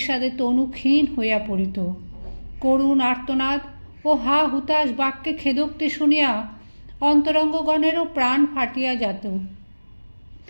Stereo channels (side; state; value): both; inverted; correlation -1.00